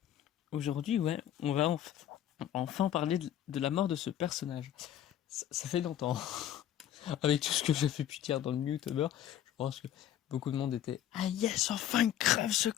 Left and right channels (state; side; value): quieter; right; 11.2 dB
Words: aujourd'hui, on va enfin parler de la mort de ce personnage. Ça fait longtemps. Avec tout ce que j'ai pu dire dans le Mewtober, je pense que beaucoup de monde était « Ah yes, enfin crève ce